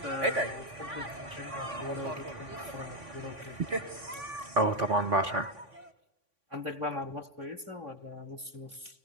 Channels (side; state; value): left; late; 3.5 ms